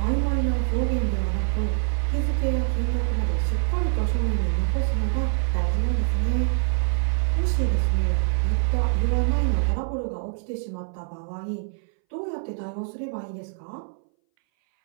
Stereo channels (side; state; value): left; silent; 61 dB below the other